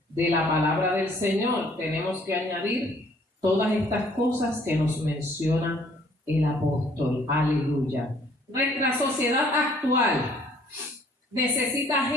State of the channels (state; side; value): normal; both; correlation 0.60